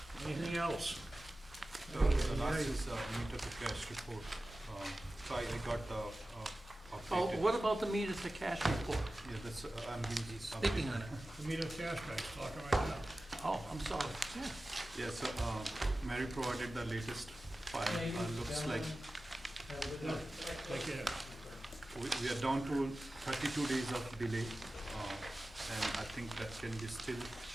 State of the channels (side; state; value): both; normal; correlation 0.95